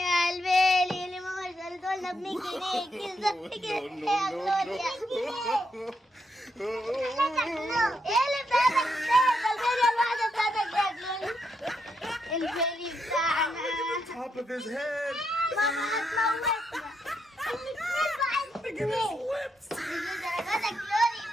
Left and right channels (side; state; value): both; normal; correlation 0.80